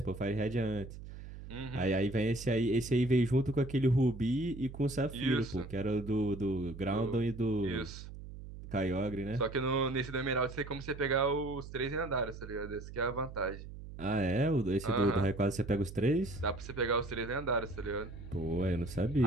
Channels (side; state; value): right; noise; hum, 12 dB below the sound